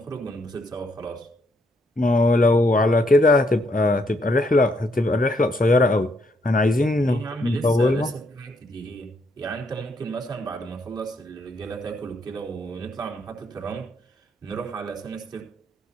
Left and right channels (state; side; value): normal; both; correlation 0.73